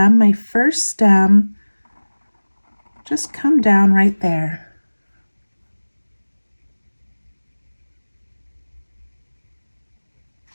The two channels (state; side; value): inverted; both; correlation -1.00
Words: my first stem, just come down right there.